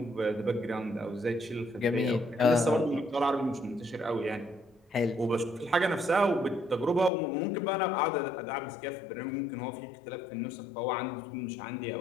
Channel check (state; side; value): drops out; right; at 7.1 s